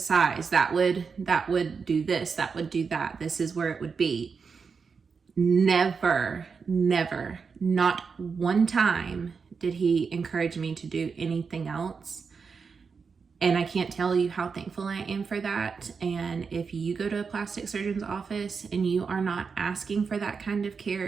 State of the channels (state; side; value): quieter; left; 5.4 dB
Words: that would do this, that would do that. This is where it would be. Never, not one time did he encourage me to do anything else. And I can't tell you how thankful I am for that. And if you go to a plastic surgeon's office and you are not asking for that kind of care,